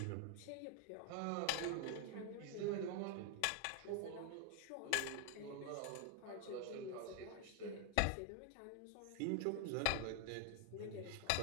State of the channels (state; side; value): different; both; correlation 0.00